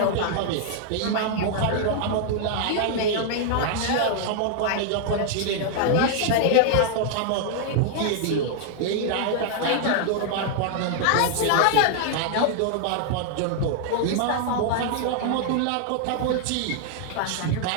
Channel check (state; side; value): different; both; correlation 0.00